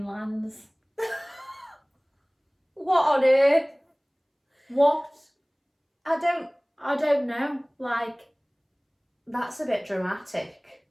lands? What on earth? What? I don't know. Like, that's a bit dramatic.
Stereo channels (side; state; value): both; identical; correlation 1.00